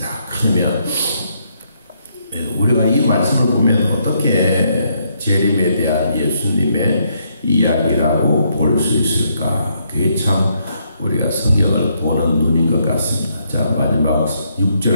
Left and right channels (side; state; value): both; inverted; correlation -0.74